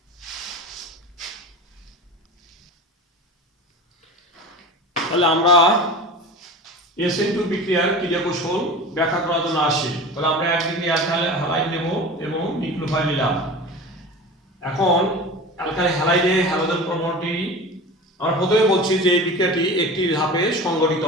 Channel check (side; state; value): both; normal; correlation 0.33